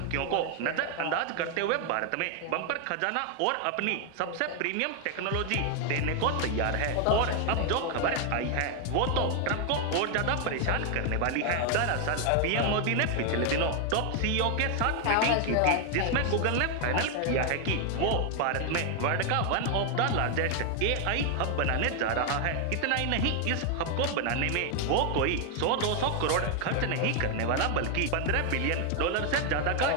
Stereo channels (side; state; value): both; different; correlation 0.00